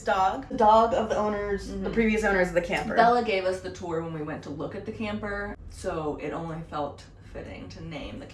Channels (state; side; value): identical; both; correlation 1.00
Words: dog. The dog of the owners, the previous owners of the camper. Bella gave us the tour when we went to look at the camper, so it only felt fitting to name the